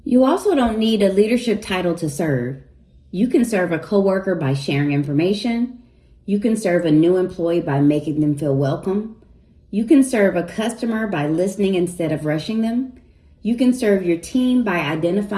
You also don't need a leadership title to serve. You can serve a coworker by sharing information. You can serve a new employee by making them feel welcome. You can serve a customer by listening instead of rushing them. You can serve your team by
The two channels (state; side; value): identical; both; correlation 1.00